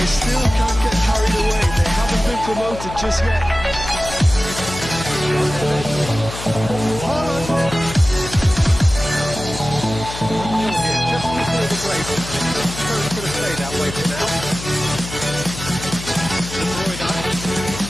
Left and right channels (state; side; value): noise; left; hum, 10 dB below the sound